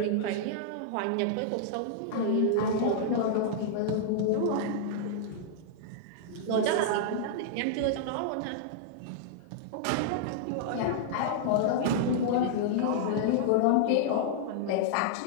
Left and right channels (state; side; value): different; both; correlation -0.01